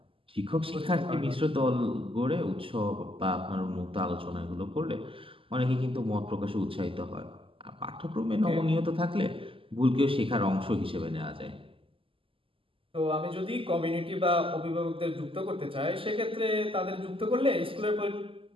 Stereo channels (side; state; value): left; late; 0.26 ms